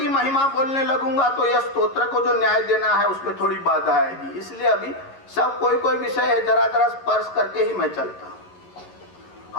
महिमा बोलने लगूंगा तो यह स्तोत्र को जो न्याय देना है उसमें थोड़ी बाधा आएगी। इसलिए अभी सब कोई विषय है, जरा जरा स्पर्श करके ही मैं चलता हूं।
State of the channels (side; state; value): right; late; 11 ms